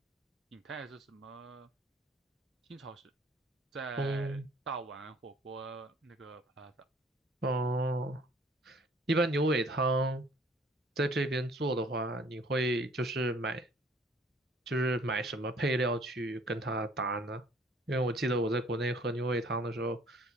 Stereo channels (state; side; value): normal; both; correlation 0.57